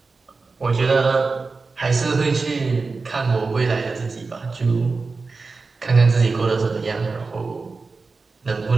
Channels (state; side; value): quieter; left; 4.1 dB